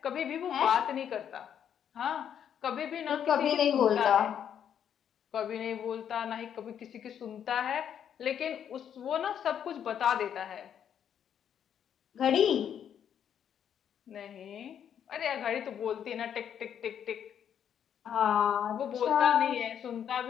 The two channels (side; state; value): right; quieter; 8.9 dB